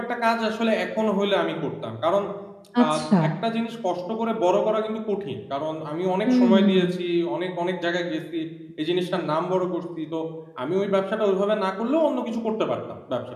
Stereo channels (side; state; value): both; identical; correlation 1.00